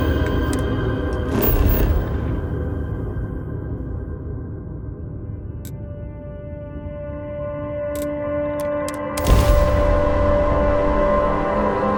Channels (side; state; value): both; identical; correlation 1.00